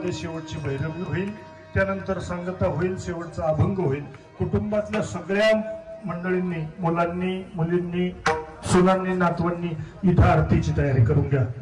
शेवटची भैरवी होईल, त्यानंतर सांगता होईल, शेवटचा अभंग होईल. कुटुंबातल्या सगळ्या मंडळींनी, मुलांनी, मुलींनी, सुनांनी, नातवांनी इथं आरतीची तयारी करून घ्या.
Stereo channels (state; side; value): identical; both; correlation 1.00